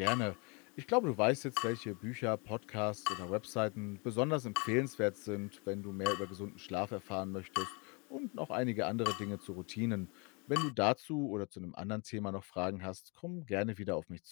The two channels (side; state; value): right; quieter; 31.5 dB